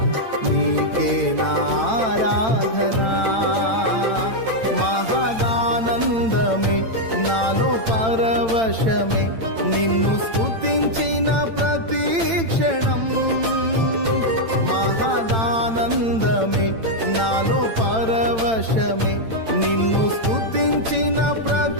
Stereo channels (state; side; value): late; left; 8.9 ms